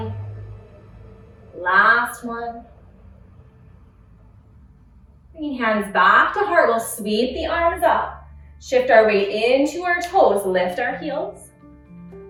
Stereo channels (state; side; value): identical; both; correlation 1.00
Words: Last one. Bringing hands back to heart, we'll sweep the arms up. Shift our weight into our toes, lift our heels.